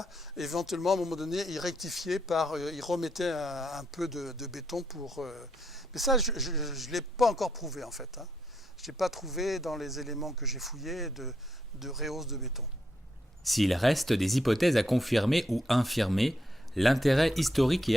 éventuellement à un moment donné il rectifiait il remettait un peu de béton pour. Mais ça je ne l'ai pas encore prouvé en fait. Je n'ai pas trouvé dans les éléments que j'ai fouillés de rehausse de béton. S'il reste des hypothèses à confirmer ou infirmer, l'intérêt historique et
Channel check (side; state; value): both; normal; correlation 0.78